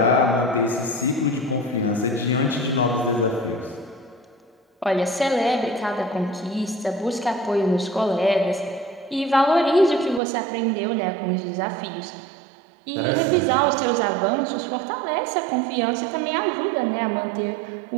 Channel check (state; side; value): drops out; left; at 10.2 s